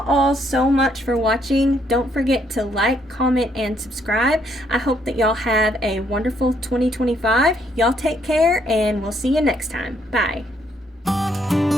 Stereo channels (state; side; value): normal; both; correlation 0.71